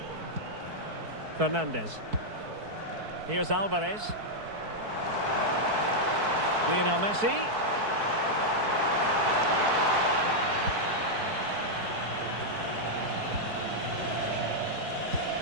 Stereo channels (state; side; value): late; left; 4.6 ms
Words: Fernandez. Here's Alvarez. Lionel Messi.